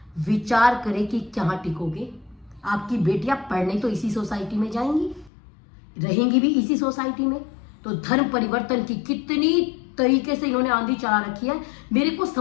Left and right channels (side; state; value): right; drops out; at 5.3 s